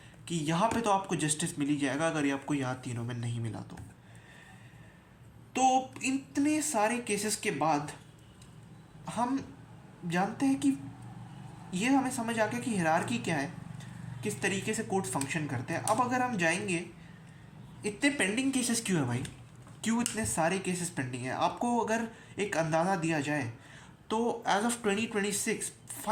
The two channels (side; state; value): both; identical; correlation 1.00